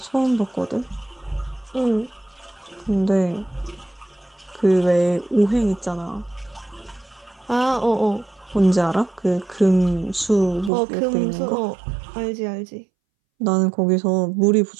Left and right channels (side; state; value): left; drops out; at 10.7 s